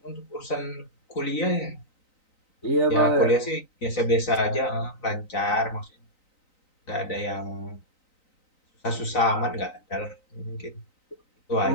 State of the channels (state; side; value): late; right; 3.9 ms